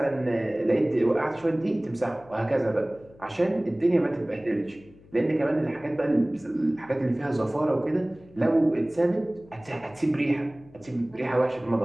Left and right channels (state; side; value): noise; left; hum, 25 dB below the sound